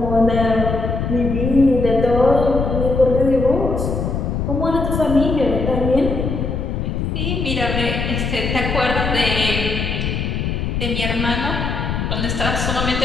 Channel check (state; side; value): noise; left; rumble, 2 dB below the sound